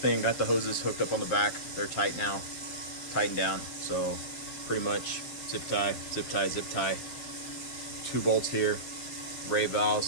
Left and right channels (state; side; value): late; right; 7.6 ms